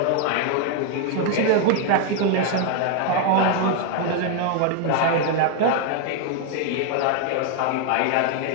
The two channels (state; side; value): different; both; correlation 0.01